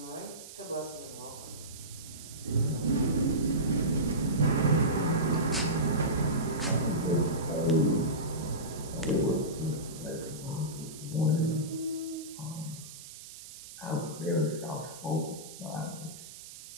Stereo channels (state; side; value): noise; right; hiss, 15 dB below the sound